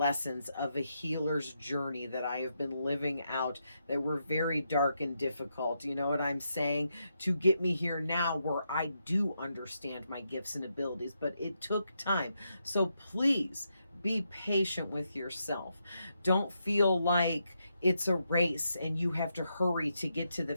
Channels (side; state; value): both; inverted; correlation -0.82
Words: of a healer's journey that I have been living out, that were very dark and difficult, you know what I'm saying, to get me here now where I do understand my gifts and abilities. But it took time. So please be patient with yourself. Don't feel like it's a race and you have to hurry to get to the